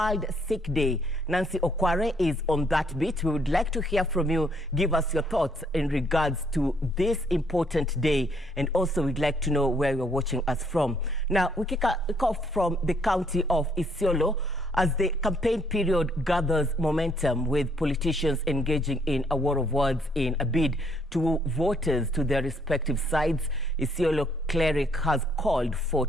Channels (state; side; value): normal; both; correlation 0.69